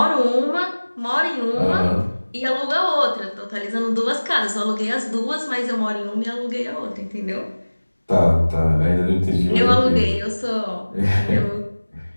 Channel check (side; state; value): both; inverted; correlation -1.00